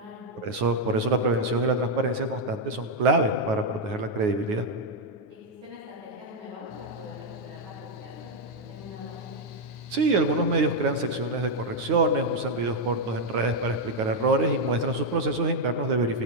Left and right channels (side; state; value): left; late; 9.4 ms